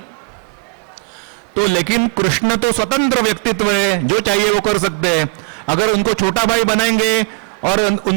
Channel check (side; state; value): left; quieter; 27.3 dB